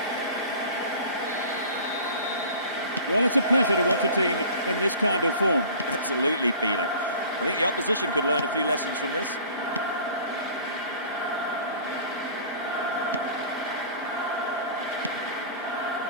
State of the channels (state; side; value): inverted; both; correlation -0.43